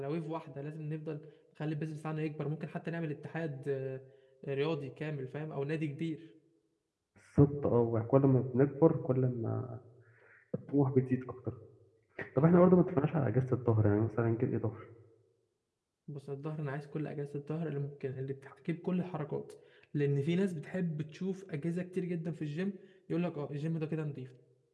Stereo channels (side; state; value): both; identical; correlation 1.00